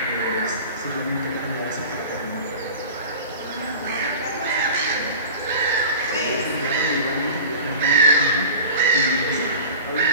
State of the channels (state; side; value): inverted; both; correlation -0.36